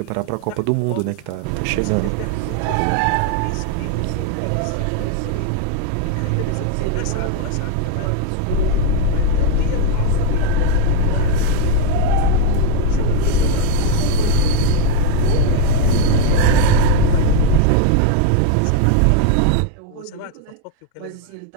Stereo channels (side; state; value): both; different; correlation 0.01